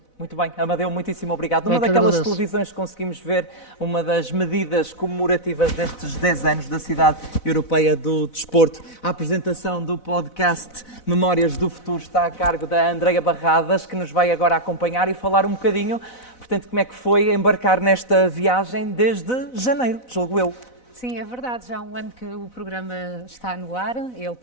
Muito bem, Amadeu, muitíssimo obrigado. Numa daquelas televisões conseguimos ver uma das medidas comemorativas destes 10 anos da Cidade Europeia do Desporto. A apresentação do podcast Memórias do Futuro está a cargo da Andreia Barradas, que nos vai agora acompanhar e falar um bocadinho, portanto, como é que foi embarcar nesta viagem desde janeiro, julgo eu. Sim, é verdade. Já há um ano que o programa está no ar. Ele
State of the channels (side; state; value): right; late; 4.0 ms